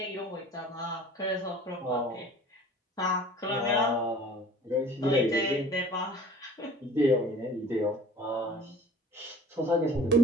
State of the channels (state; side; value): normal; both; correlation 0.46